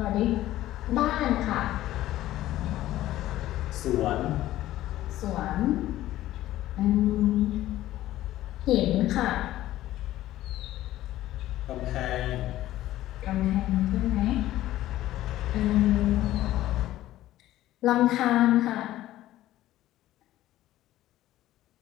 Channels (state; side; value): quieter; right; 14.6 dB